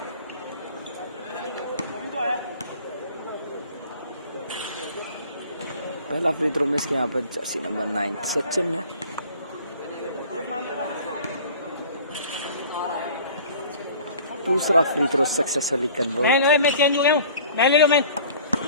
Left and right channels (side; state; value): both; inverted; correlation -0.47